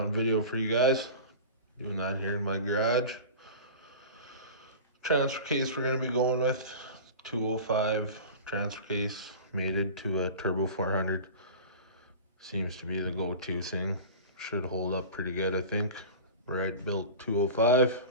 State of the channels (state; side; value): inverted; both; correlation -0.34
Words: video for you guys. Doing that here in my garage. Transfer case we're gonna be going with 205 transfer case, mated to a turbo 400. Seems to be the go-to thing. Should hold up pretty good, I think. Right built 205.